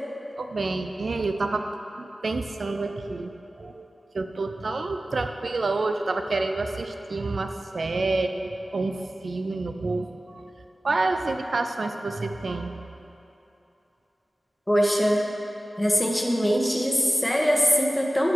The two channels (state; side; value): normal; both; correlation 0.96